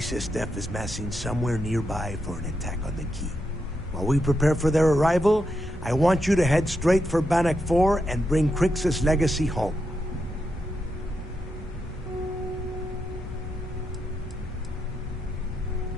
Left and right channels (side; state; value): both; normal; correlation 0.84